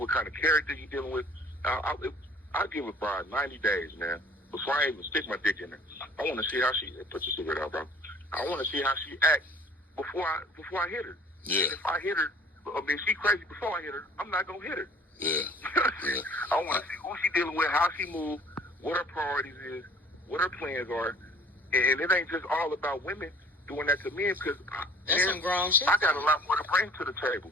kind of character you're dealing with. I'll give a bride 90 days, man, before I even stick my dick in her. I want to see how she put your cigarette out, bro. I want to see how she acts before I hit her. Yeah. If I hit her, if she crazy before I hit her, I'm not gonna hit her. Yeah. I want to see who she dealing with, how she moves, what her priorities is, what her plans are, And it ain't just all about women doing that to men, because that's some grown shit. I got a lot more to bring to the table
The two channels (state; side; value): normal; both; correlation 0.51